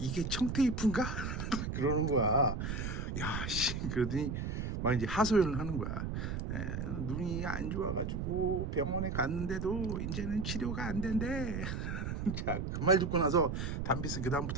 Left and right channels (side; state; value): right; noise; rumble, 3 dB below the sound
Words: 청테이프인가? 그러는 거야. 야, 씨, 그러더니 막 이제 하소연을 하는 거야. 눈이 안 좋아가지고 병원에 갔는데도 이제는 치료가 안 된대. 자, 그 말 듣고 나서 담비스 그